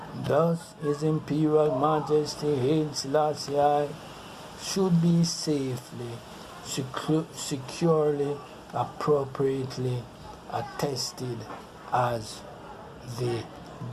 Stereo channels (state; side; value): identical; both; correlation 1.00